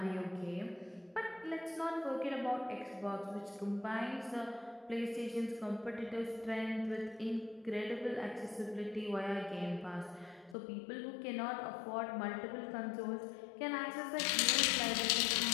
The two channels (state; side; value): drops out; right; at 10.6 s